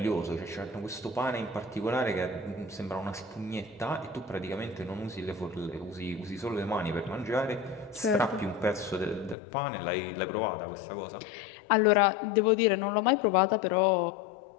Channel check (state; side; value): drops out; right; at 9.3 s